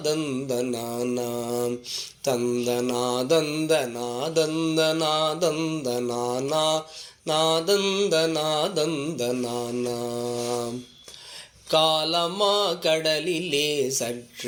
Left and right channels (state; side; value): identical; both; correlation 1.00